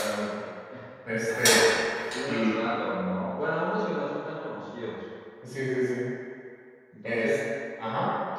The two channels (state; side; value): identical; both; correlation 1.00